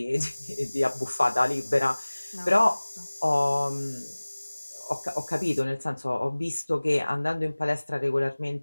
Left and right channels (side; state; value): both; inverted; correlation -1.00